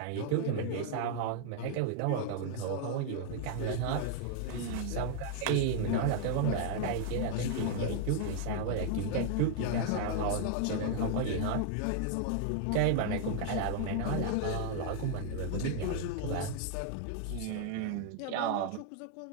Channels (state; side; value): different; both; correlation 0.00